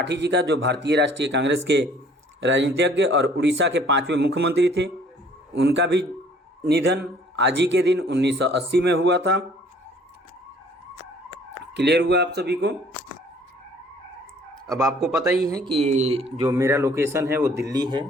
जी का, जो भारतीय राष्ट्रीय कांग्रेस के राजनीतिज्ञ और उड़ीसा के 5वें मुख्यमंत्री थे, उनका भी निधन आज ही के दिन 1980 में हुआ था। क्लियर हुआ आप सभी को? अब आपको पता ही है कि जो मेरा लोकेशन है वो दिल्ली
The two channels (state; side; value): normal; both; correlation 0.56